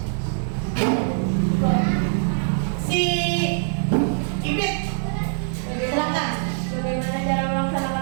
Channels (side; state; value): left; silent; digital silence